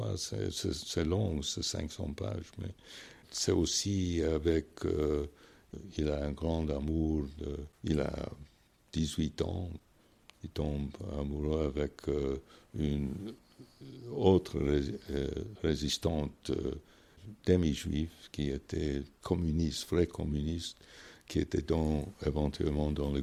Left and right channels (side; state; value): both; identical; correlation 1.00